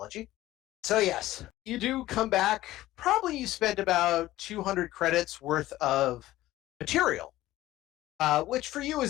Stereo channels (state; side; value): quieter; right; 15.8 dB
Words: So yes, you do come back. Probably you spend about 200 credits worth of material, which for you